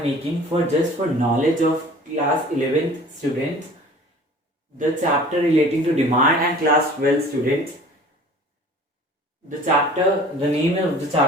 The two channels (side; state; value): both; normal; correlation 0.46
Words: making for knowledge of class 11th students, the chapter relating to demand, and class 12 students. The name of the